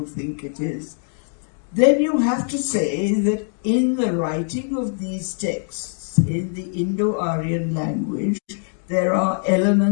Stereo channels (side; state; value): right; silent; 55 dB below the other